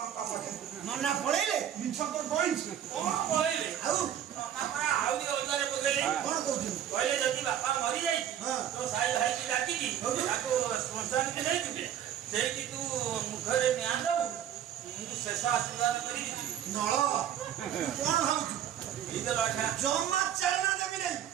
ପାଖରେ। ନନା ପଳେଇଲେ? ମିଛ ତ କହିଛି। କଣ କହିଲେ? ଆଉ ଆହୁରି ଅଲଗାରେ ପକେଇଲେ। କଣ କହୁଛନ୍ତି? କହିଲେ ଯଦି ବାପା ମରିଯାଇଛି ତ ସାଇ ଭାଇକି ଡାକିକି ତାକୁ ଶ୍ମଶାନକୁ ନେଇଯିବେ। ସେଇଠି ତୁ ମୁଖରେ ନିଆଁ ଦବୁ। ମୁଁ ଶେଷ ଆଶୀର୍ବାଦ କରିକି ଯିବି। ନଳ କଣ ଭାବୁଛୁ? ଜମା ଚାଲନା ଦେବି ନାହିଁ।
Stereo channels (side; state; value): left; quieter; 10.1 dB